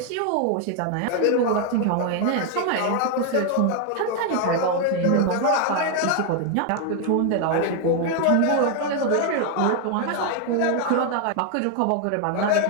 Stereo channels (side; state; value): both; different; correlation 0.01